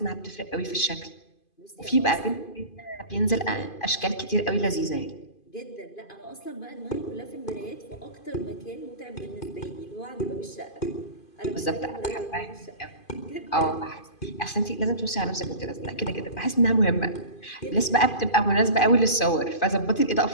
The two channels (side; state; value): right; late; 2.5 ms